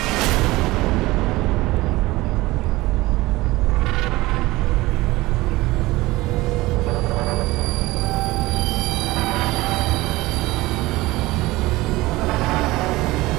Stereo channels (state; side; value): quieter; left; 19.6 dB